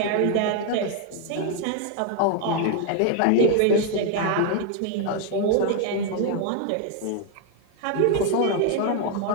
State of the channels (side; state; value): both; different; correlation 0.00